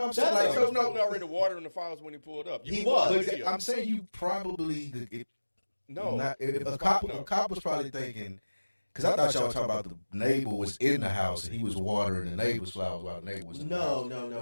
I'm saying like, he was probably already watering the flowers when he pulled up. He was. But I'm saying you probably no. If a cop was probably thinking. Because I thought y'all were talking about the neighbor was in the house and he was watering the neighbor's flowers while the neighbor was in the house. No.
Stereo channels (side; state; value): both; inverted; correlation -1.00